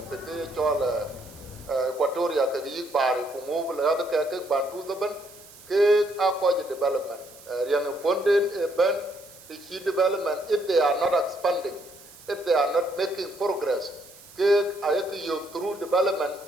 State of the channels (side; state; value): right; noise; hiss, 21 dB below the sound